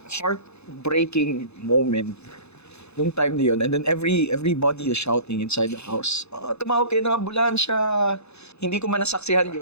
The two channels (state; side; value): late; right; 0.80 ms